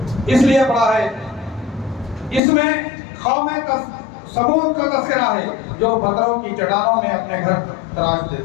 اس لیے پڑا ہے، اس میں قوم ثمود کا تذکرہ ہے جو پتھروں کی چٹانوں میں اپنے گھر تراش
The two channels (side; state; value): right; drops out; at 2.4 s